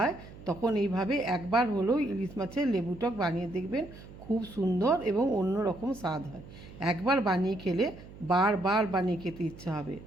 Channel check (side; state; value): right; noise; hum, 17 dB below the sound